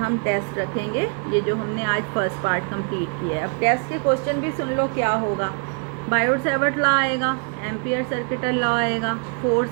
टेस्ट रखेंगे, ये जो हमने आज फर्स्ट पार्ट कंप्लीट किया है। अब टेस्ट के क्वेश्चन भी सुन लो क्या होगा। बायोट-सैवर्ट लॉ आएगा, एम्पियर सर्किटल लॉ आएगा,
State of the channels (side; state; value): left; quieter; 38.3 dB